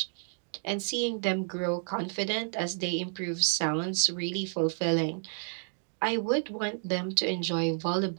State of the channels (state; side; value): silent; left; 57 dB below the other